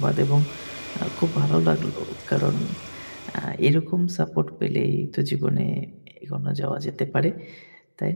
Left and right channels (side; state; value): both; inverted; correlation -1.00